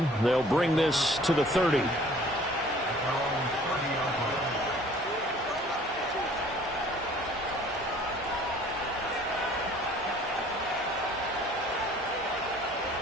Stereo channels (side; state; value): both; normal; correlation 0.53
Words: They'll bring this to the 30.